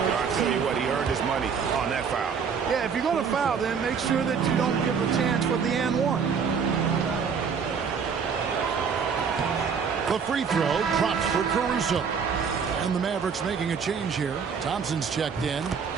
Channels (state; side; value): quieter; left; 6.3 dB